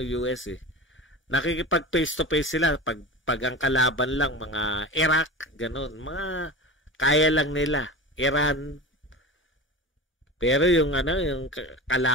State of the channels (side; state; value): both; normal; correlation 0.31